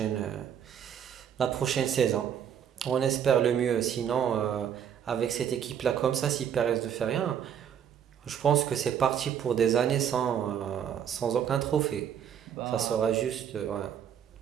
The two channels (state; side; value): quieter; left; 8.9 dB